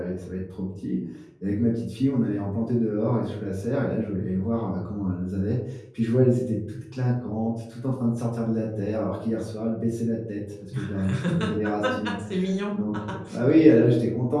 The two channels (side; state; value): both; identical; correlation 1.00